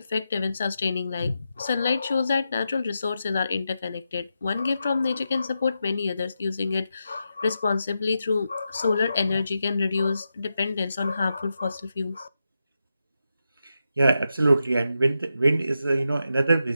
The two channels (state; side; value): inverted; both; correlation -0.88